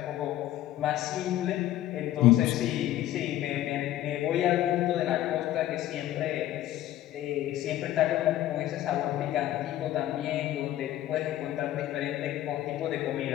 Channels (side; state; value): right; quieter; 13.6 dB